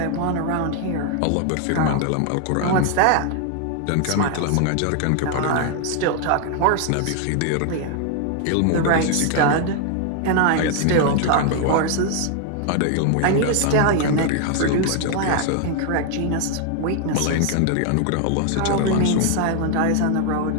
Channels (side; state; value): both; different; correlation 0.00